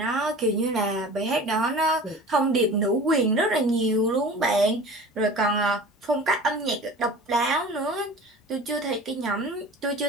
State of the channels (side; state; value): both; normal; correlation 0.39